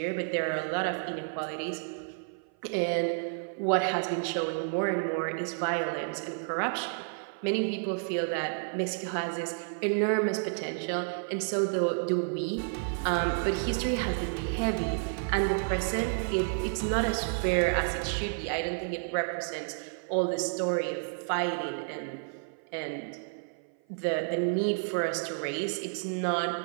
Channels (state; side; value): silent; left; 55 dB below the other